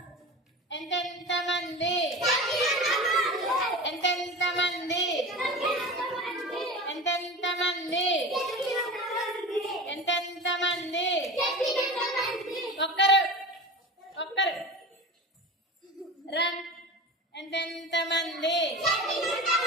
ఎంతెంత మంది, ఎంతెంత మంది, ఎంతెంత మంది, ఎంతెంత మంది. ఒక్కరు ఒక్కరు. రన్. ఎంతెంత మంది,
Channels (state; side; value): normal; both; correlation 0.31